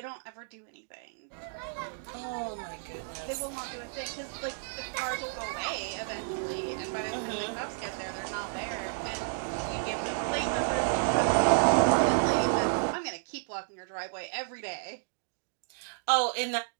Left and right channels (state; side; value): silent; left; digital silence